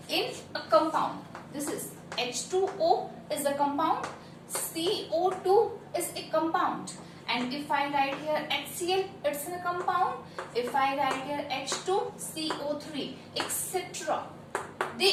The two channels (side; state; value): both; identical; correlation 1.00